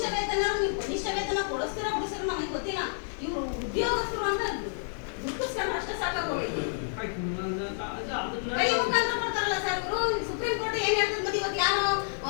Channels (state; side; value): silent; right; digital silence